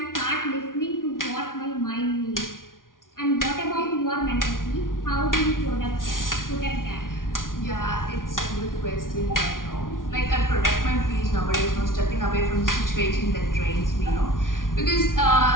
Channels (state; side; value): late; right; 0.89 ms